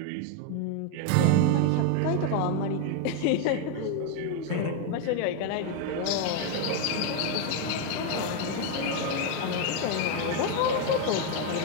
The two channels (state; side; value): different; both; correlation 0.01